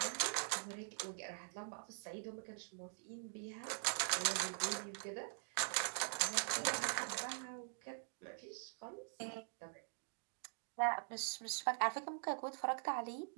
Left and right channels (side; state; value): left; silent; digital silence